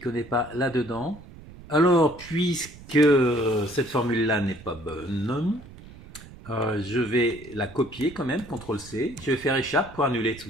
connaît pas là-dedans. Alors, puisque cette formule-là n'est pas bonne, je vais la copier quand même, CTRL-C. Je vais faire échappe pour annuler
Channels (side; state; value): right; noise; rumble, 18 dB below the sound